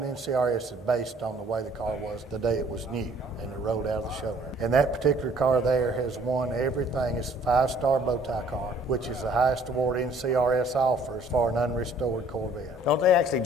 is based on the way the car was the day it was new and it rolled out of the showroom. And that particular car there has won everything. It's a 5-star bow tie car, which is the highest award NCRS offers for an unrestored Corvette. Don't they actually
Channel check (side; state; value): both; normal; correlation 0.58